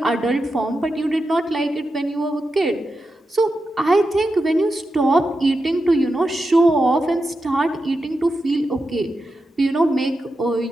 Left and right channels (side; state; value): both; normal; correlation 0.89